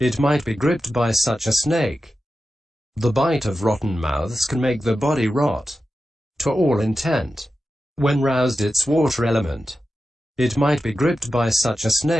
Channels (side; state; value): both; normal; correlation 0.91